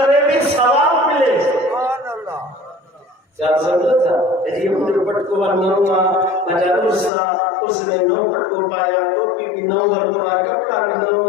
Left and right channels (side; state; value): right; drops out; at 7.1 s